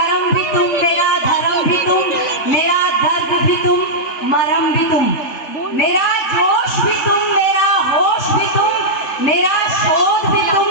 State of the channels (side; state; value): right; late; 3.5 ms